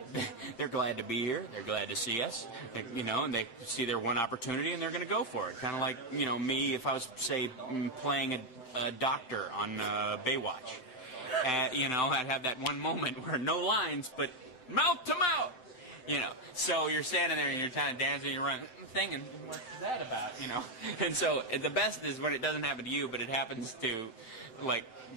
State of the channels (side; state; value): right; late; 7.8 ms